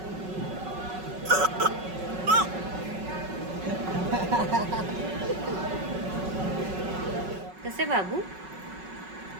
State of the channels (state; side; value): late; left; 5.4 ms